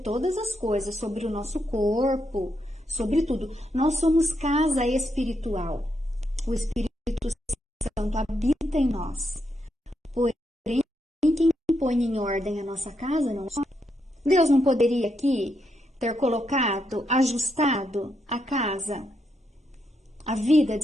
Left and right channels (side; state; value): both; normal; correlation 0.80